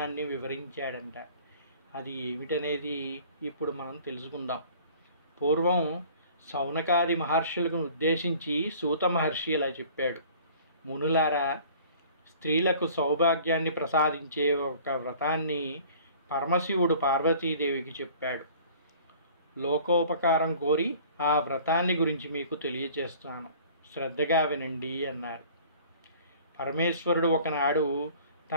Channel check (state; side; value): inverted; both; correlation -0.49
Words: వివరించాడంట. అది ఏమిటనేది ఇప్పుడు మనం తెలుసుకుందాం. పూర్వం సౌనకాది మహర్షులను ఉద్దేశించి సూత మహర్షి ఇలా చెప్పాడు: మునులారా, స్త్రీలకు సౌభాగ్యాన్ని ప్రసాదించే ఒక వ్రతాన్ని పరమశివుడు పార్వతీదేవికి చెప్పాడు. లోకోపకారం కోరి ఆ వ్రతాన్ని గురించి మీకు తెలియచేస్తాను, శ్రద్ధగా వినండి అన్నారు. పరమేశ్వరుడు ఒకనాడు